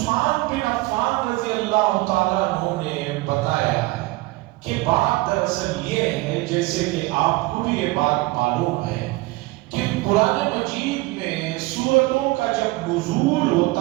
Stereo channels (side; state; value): left; quieter; 20.9 dB